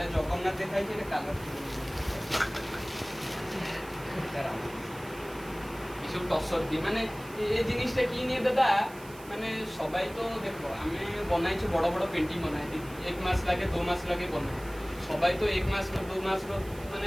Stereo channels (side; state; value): right; noise; hiss, 20 dB below the sound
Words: জগন্নাথ দেখাইছে এটা কালার এসব টসর দিয়ে মানে এই জিনিসটা কি নিয়ে দাদা মানে সবাই তো দেখো আমি বনাইছি বড় বড় পেন্টিং বনাই দিই 1 মাস লাগে 2 মাস লাগে বনাই সবাই তো 1 মাস में 2 मास में